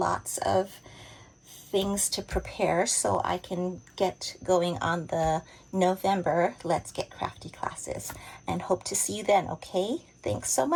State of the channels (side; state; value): both; identical; correlation 1.00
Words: of things to prepare so I can get going on the November Let's Get Crafty classes, and hope to see you then, okay? Thanks so